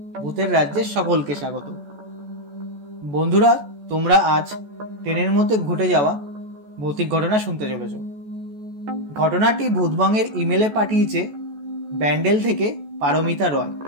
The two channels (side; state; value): left; late; 14 ms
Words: ভূতের রাজ্যের সকলকে স্বাগত। বন্ধুরা, তোমরা আজ ট্রেনের মধ্যে ঘটে যাওয়া ভৌতিক ঘটনা শুনতে চলেছ। ঘটনাটি ভূতবংয়ের ইমেলে পাঠিয়েছে ব্যান্ডেল থেকে পারমিতা রয়।